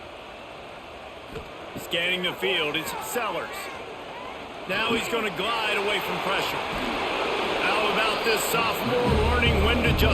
Scanning the field, it's Sellers. Now he's going to glide away from pressure. How about this sophomore learning when to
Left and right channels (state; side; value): identical; both; correlation 1.00